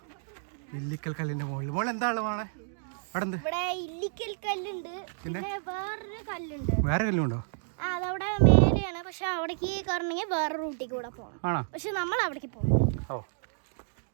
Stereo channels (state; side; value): silent; left; digital silence